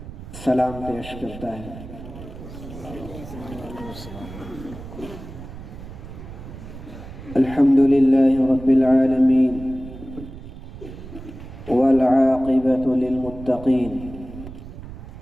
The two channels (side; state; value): right; noise; rumble, 13 dB below the sound